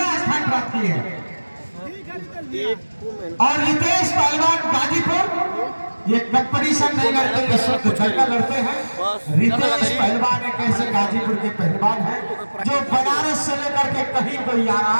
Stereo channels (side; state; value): both; inverted; correlation -1.00